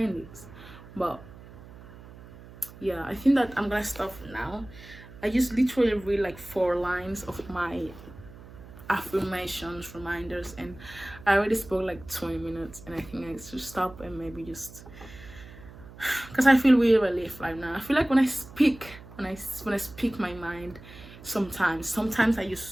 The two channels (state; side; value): noise; right; hum, 18 dB below the sound